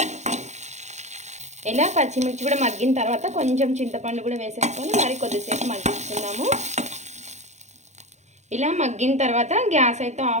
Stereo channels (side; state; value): left; late; 0.33 ms